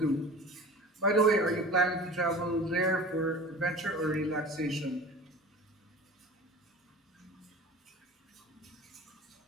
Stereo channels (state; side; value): normal; both; correlation 0.38